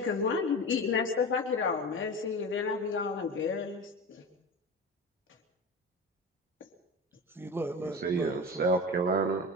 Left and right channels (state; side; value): normal; both; correlation 0.28